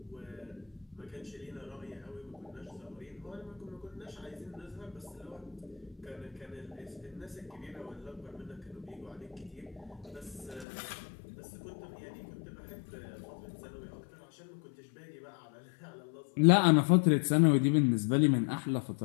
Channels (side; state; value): right; drops out; at 10.7 s